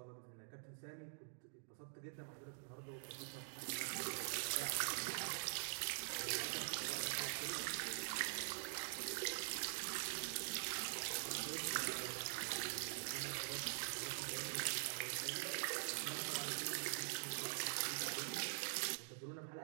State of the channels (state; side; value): silent; left; digital silence